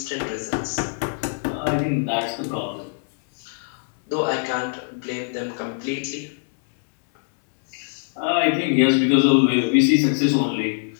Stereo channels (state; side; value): silent; right; digital silence